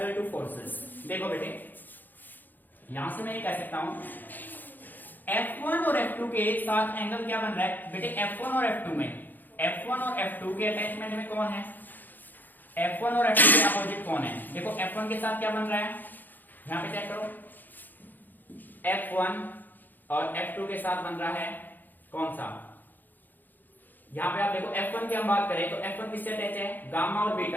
two forces. देखो बेटे, यहां से मैं ये कह सकता हूं F1 और F2 के साथ एंगल क्या बन रहा है? बेटे F1 और F2 में, F1 और F2 के अटैचमेंट में कौन है? F1 और F2 के अपोजिट कौन है? देखो F1 के साथ क्या बन रहा है, यहां पे चेक करो, F1 और F2 के साथ बन रहा है कौन सा? यहां पे आप देखो F1 की हम बात करें तो F1 किससे अटैच है? गामा और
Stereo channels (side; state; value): right; late; 0.087 ms